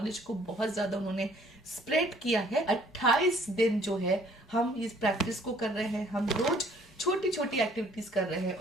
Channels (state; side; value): normal; both; correlation 0.58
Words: को बहुत ज्यादा उन्होंने स्प्रेड किया है। 28 दिन जो है हम इस प्रैक्टिस को कर रहे हैं। हम रोज छोटी छोटी एक्टिविटीज कर रहे हैं